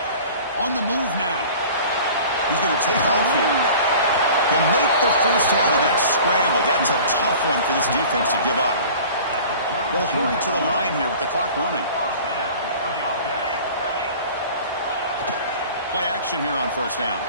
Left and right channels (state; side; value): inverted; both; correlation -0.43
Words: On the move now. He's going to take off here. He'll make the first out of that scramble. That's a tough one for this defense to give up. They'll hurry to the line here with the clock running. Play action here on first down.